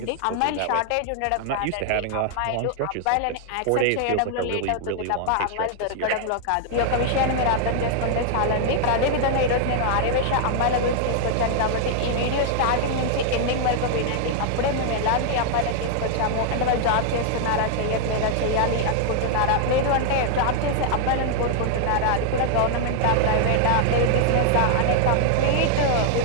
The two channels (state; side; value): different; both; correlation 0.00